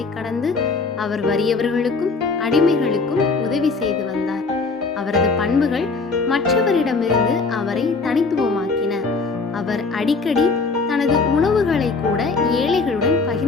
கடந்து அவர் வறியவர்களுக்கும் அடிமைகளுக்கும் உதவி செய்து வந்தார். அவரது பண்புகள் மற்றவரிடமிருந்து அவரை தனித்துவமாக்கின. அவர் அடிக்கடி தனது உணவுகளை கூட ஏழைகளுடன்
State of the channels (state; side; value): quieter; right; 4.2 dB